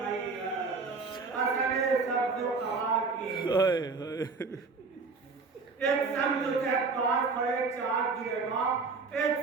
असले सब जो कहा की एक संग तुझे 5 खड़े 4 दिए माँ एक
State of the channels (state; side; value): quieter; left; 4.4 dB